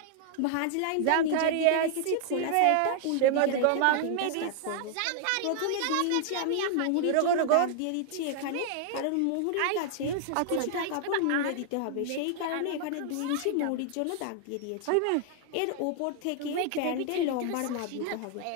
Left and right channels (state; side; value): different; both; correlation -0.01